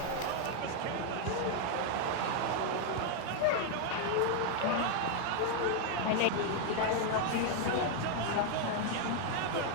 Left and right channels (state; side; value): different; both; correlation 0.00